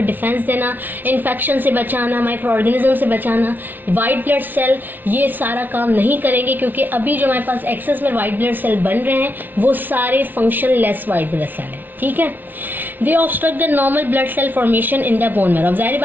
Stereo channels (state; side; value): late; left; 0.087 ms